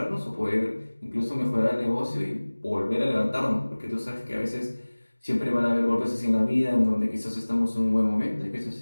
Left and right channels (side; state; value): both; inverted; correlation -1.00